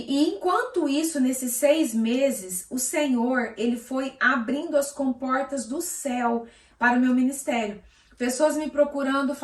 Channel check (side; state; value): both; identical; correlation 1.00